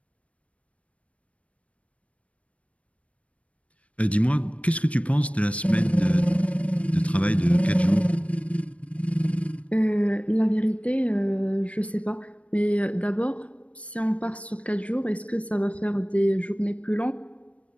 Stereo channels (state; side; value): late; right; 0.064 ms